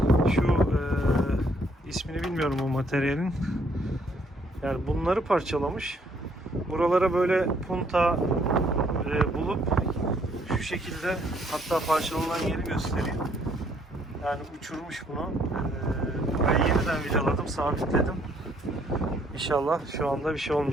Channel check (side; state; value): both; normal; correlation 0.66